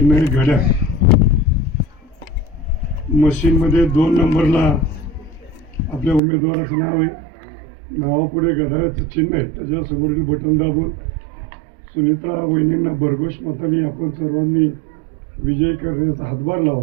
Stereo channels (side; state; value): left; drops out; at 6.2 s